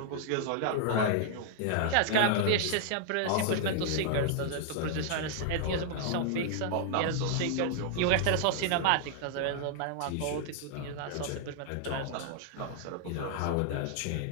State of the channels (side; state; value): both; different; correlation 0.00